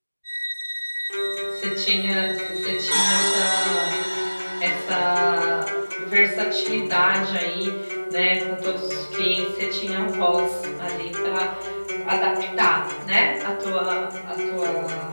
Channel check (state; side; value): inverted; both; correlation -1.00